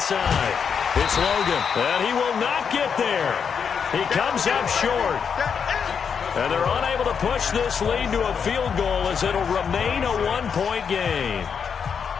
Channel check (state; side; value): quieter; right; 6.7 dB